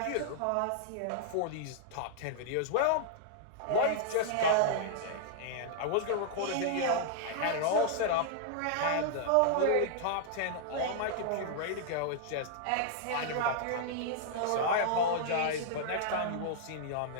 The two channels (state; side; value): different; both; correlation -0.01